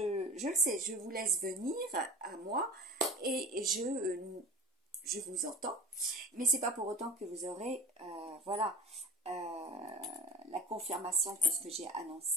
le sais, je vous laisse venir à moi et je vous entends, mais c'est pas pour autant que vous aurez, voilà, la confirmation que ce que j'ai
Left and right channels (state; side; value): normal; both; correlation 0.35